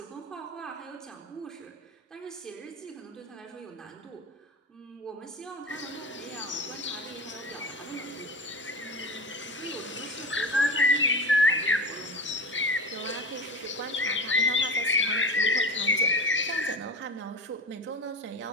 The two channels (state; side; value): normal; both; correlation 0.28